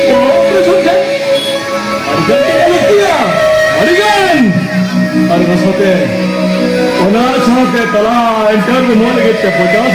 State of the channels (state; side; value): identical; both; correlation 1.00